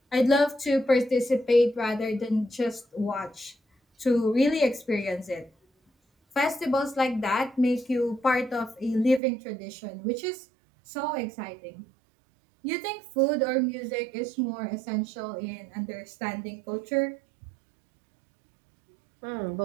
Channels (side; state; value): left; drops out; at 9.2 s